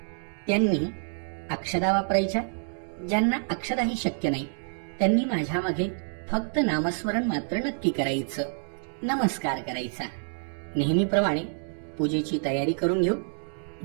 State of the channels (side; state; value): left; silent; 60 dB below the other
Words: त्यांनी अक्षदा वापरायच्या. ज्यांना अक्षदाही शक्य नाही त्यांनी माझ्या मागे फक्त नामस्मरण मात्र नक्की करायचं, नमस्कार करायचा. नेहमीप्रमाणे पूजेची तयारी करून घेऊ.